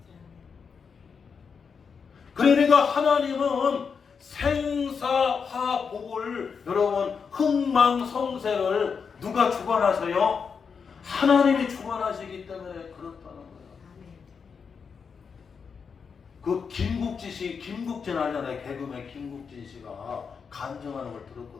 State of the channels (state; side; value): quieter; right; 6.0 dB